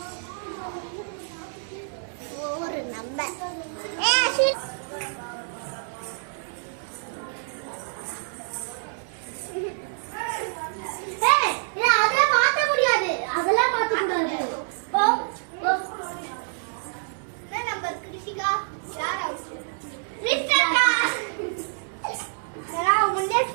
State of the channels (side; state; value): left; silent; 60 dB below the other